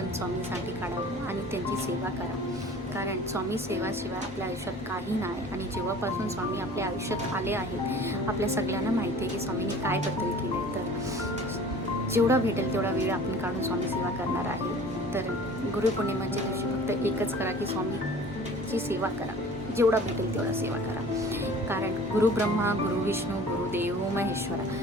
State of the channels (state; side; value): normal; both; correlation 0.45